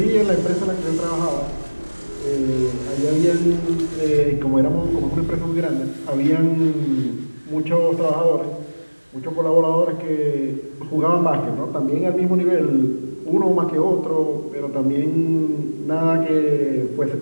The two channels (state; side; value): inverted; both; correlation -1.00